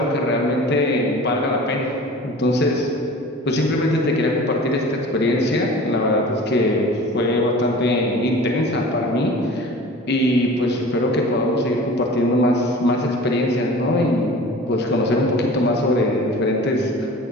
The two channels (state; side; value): normal; both; correlation 0.40